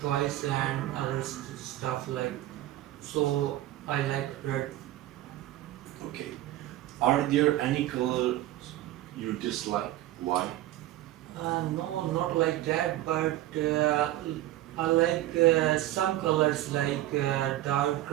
and other stuff like. So I like red. Okay. Are there any colors you dislike? Why? No, not like that, but I like some colors like dark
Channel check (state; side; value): quieter; left; 14.9 dB